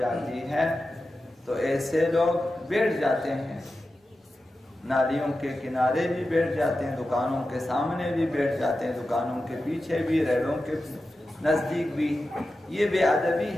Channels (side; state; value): both; normal; correlation 0.92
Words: ہے، تو ایسے لوگ بیٹھ جاتے ہیں، نالیوں کے کنارے بھی بیٹھ جاتے ہیں، دکانوں کے سامنے بھی بیٹھ جاتے ہیں، دکانوں کے پیچھے بھی، ریلوں کے نزدیک بھی۔ یہ بے ادبی